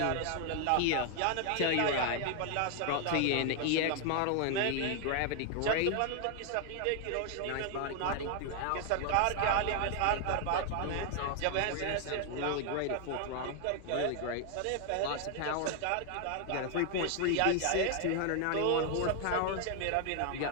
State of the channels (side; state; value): both; different; correlation 0.00